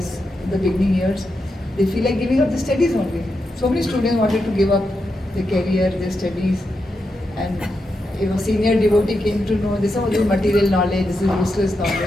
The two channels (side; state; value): both; normal; correlation 0.86